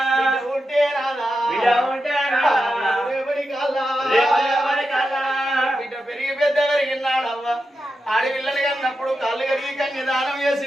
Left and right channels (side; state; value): both; normal; correlation 0.89